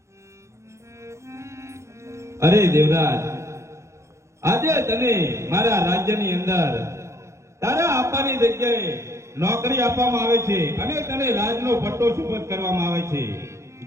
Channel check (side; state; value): left; late; 0.14 ms